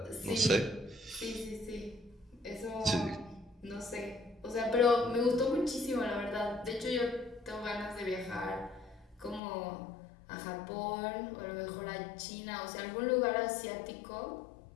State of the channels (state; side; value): drops out; right; at 9.4 s